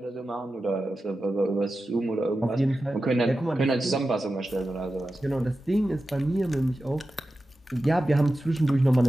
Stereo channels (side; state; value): both; normal; correlation 0.93